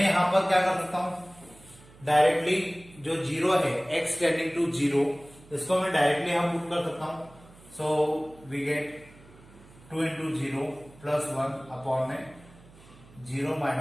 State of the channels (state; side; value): noise; right; hum, 24 dB below the sound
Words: यहाँ पर क्या कर सकता हूं, डायरेक्टली जो 0 है, x टेंडिंग टू 0, इसको मैं डायरेक्टली यहाँ पुट कर सकता हूं। So we get 2 into 0 plus 1 upon में 0